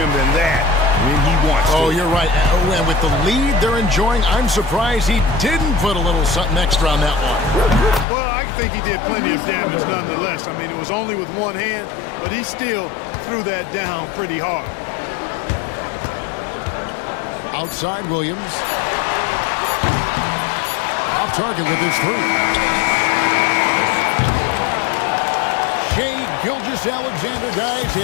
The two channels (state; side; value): drops out; right; at 8.1 s